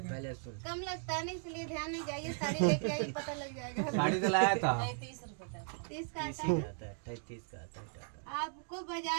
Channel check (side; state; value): left; silent; 53 dB below the other